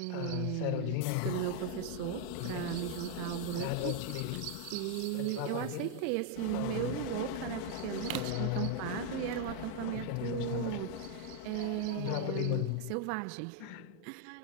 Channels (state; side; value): different; both; correlation 0.01